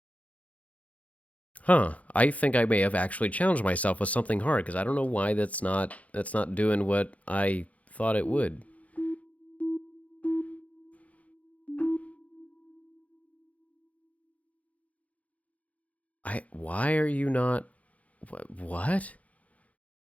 Huh. I think I may have actually challenged myself with something hard because I don't know why that's not doing what I thought it would. Why are you not what?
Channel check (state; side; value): late; right; 0.068 ms